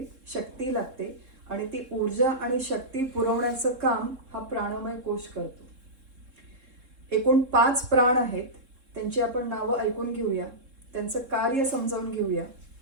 शक्ती लागते आणि ती ऊर्जा आणि शक्ती पुरवण्याचं काम हा प्राणमय कोश करतो. एकूण 5 प्राण आहेत. त्यांची आपण नावं ऐकून घेऊया, त्यांचं कार्य समजावून घेऊया.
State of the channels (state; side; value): late; left; 3.7 ms